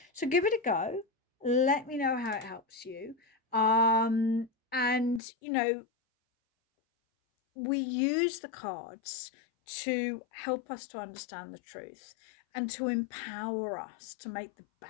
So give it a go. Let me know how it helps you. And, we use the cards to help us to understand the truth and to empower us to make the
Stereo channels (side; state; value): right; drops out; at 5.2 s